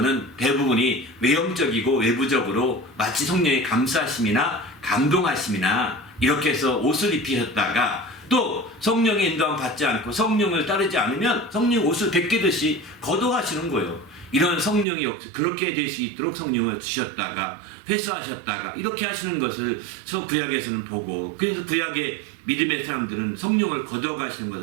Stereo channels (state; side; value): drops out; left; at 14.9 s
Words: 대부분이 외형적이고 외부적으로 마치 성령의 감사하심이나 감동하심이나 이렇게 해서 옷을 입히셨다가 또 성령의 인도함 받지 않고 성령을 따르지 않으면 성령 옷을 벗기듯이 걷어가시는 거예요. 이런 성령이 그렇게 될 수 있도록 성령을 주셨다가 회수하셨다가 이렇게 하시는 것을 구약에서는 보고 그래서 구약의 믿음의 사람들은 성령을 걷어가시는